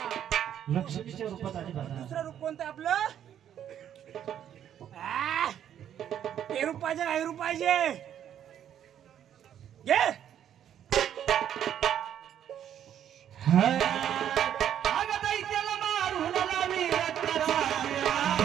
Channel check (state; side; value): quieter; left; 10.0 dB